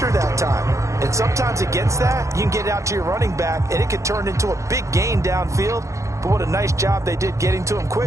that time. And sometimes against that, you can get out to your running back, and it could turn into a big gain downfield. but what a nice job they did getting to him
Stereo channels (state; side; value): late; left; 0.15 ms